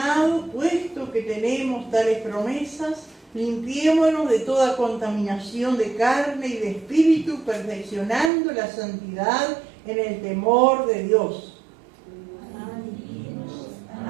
puesto que tenemos tales promesas, limpiémonos de toda contaminación de carne y de espíritu, perfeccionando la santidad en el temor de Dios.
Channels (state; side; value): drops out; left; at 8.3 s